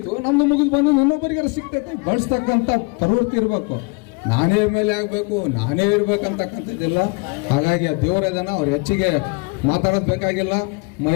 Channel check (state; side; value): quieter; right; 29.2 dB